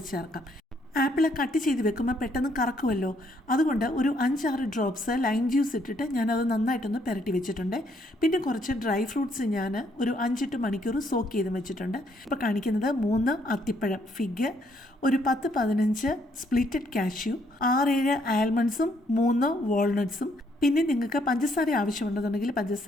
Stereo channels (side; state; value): both; normal; correlation 0.70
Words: ചേർക്കാം. ആപ്പിൾ കട്ട് ചെയ്ത് വെക്കുമ്പോൾ പെട്ടെന്ന് കറക്കുമല്ലോ, അതുകൊണ്ട് ഒരു 5-6 ഡ്രോപ്സ് ലൈം ജ്യൂസ് ഇട്ടിട്ട് ഞാനത് നന്നായിട്ടൊന്ന് പുരട്ടി വെച്ചിട്ടുണ്ട്. പിന്നെ കുറച്ച് ഡ്രൈ ഫ്രൂട്ട്സ് ഞാൻ ഒരു 5-8 മണിക്കൂർ സോക്ക് ചെയ്ത് വെച്ചിട്ടുണ്ട്. ഇപ്പോൾ കാണിക്കുന്നത് 3 അത്തിപ്പഴം ഫിഗ്, ഒരു 10-15 സ്പ്ലിറ്റഡ് കാഷ്യൂ, 6-7 ആൽമണ്ട്സും 3 വാൾനട്ട്സും. പിന്നെ നിങ്ങൾക്ക് പഞ്ചസാര ആവശ്യമുണ്ടെന്നുണ്ടെങ്കിൽ